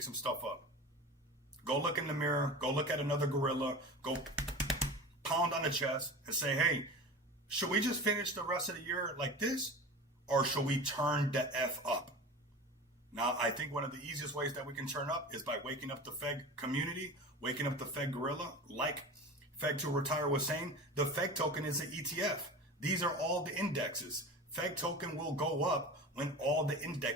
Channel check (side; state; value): both; normal; correlation 0.33